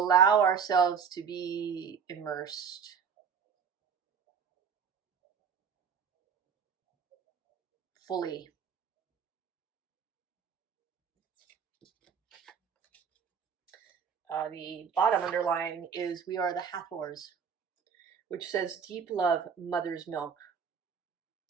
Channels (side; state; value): left; quieter; 6.7 dB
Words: ourselves to be immersed fully. The bottom underlying is we are the Hathors, which says deep love, mother's milk.